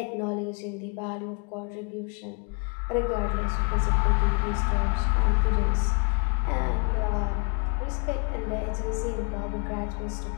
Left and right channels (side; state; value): right; quieter; 33.9 dB